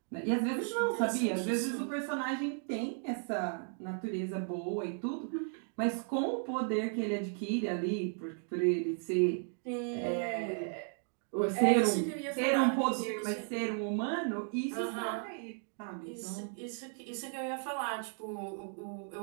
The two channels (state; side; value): silent; left; 54 dB below the other